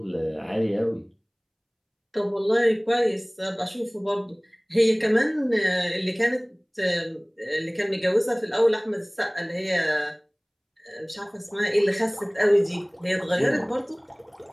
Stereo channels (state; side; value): identical; both; correlation 1.00